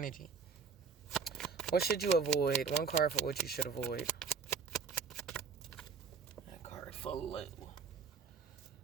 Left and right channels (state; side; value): quieter; left; 5.8 dB